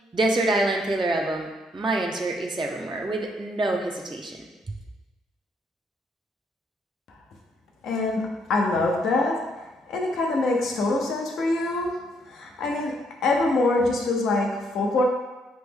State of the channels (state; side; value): normal; both; correlation 0.71